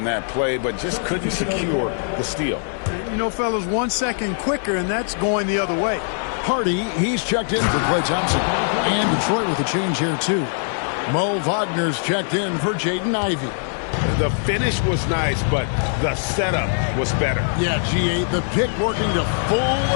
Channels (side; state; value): right; silent; digital silence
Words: that play, but just couldn't secure the steal. You know, fellas, 1 second quicker, and that's going the other way. Hardy, he's checked in for Klay Thompson. And Detroit with a change here, too. Mo Wagner's checked in for Jaden Ivey. The finish was nice, but the setup was better. Yeah, G8, the pick working to